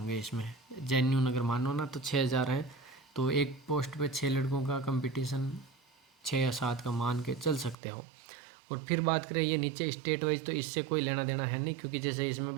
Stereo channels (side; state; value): left; drops out; at 7.8 s